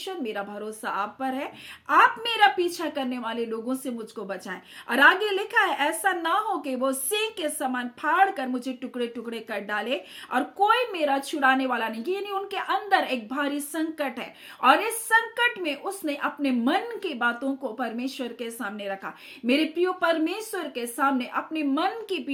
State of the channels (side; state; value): both; identical; correlation 1.00